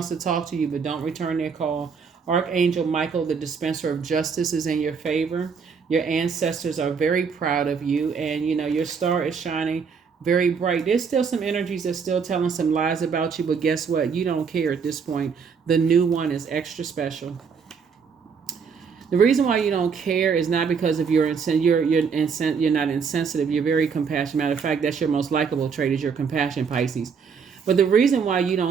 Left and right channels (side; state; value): left; quieter; 6.0 dB